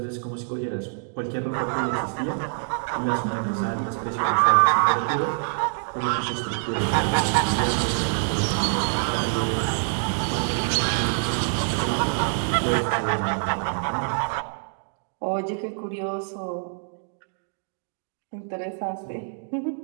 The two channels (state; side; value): silent; left; digital silence